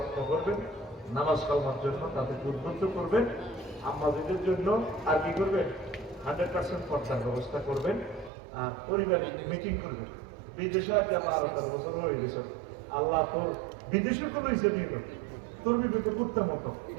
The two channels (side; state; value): left; drops out; at 8.3 s